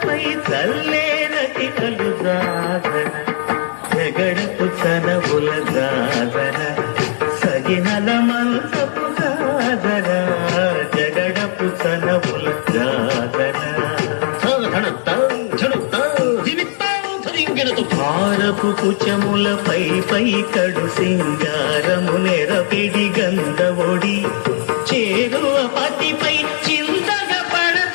చల్లేనటి కలు జాగర జగడపు చనముల జాగర సగినల మంచపు జాగర జగడపు చనముల జాగర భారపు కుచములపై పై కడు సింగారము నెరపిడి గంధవొడి చేరువ పతిపై చింతగా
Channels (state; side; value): silent; right; digital silence